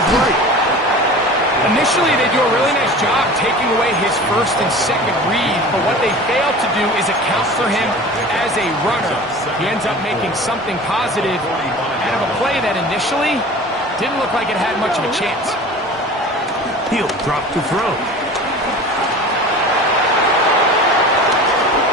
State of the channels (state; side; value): normal; both; correlation 0.38